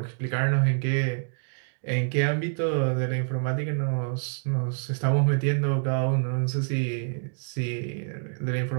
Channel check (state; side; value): silent; left; 60 dB below the other